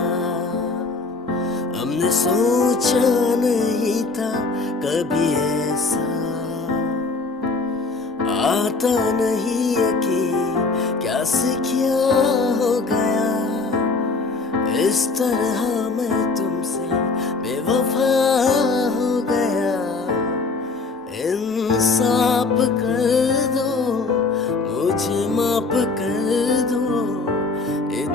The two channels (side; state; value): right; quieter; 3.9 dB